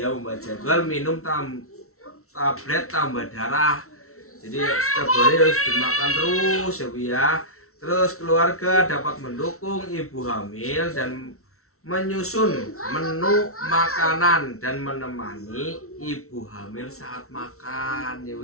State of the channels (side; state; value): right; late; 0.63 ms